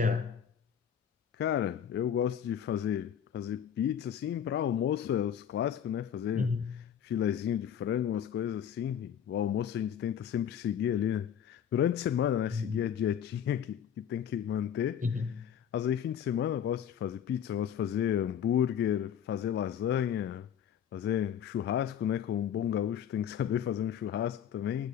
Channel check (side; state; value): right; quieter; 8.9 dB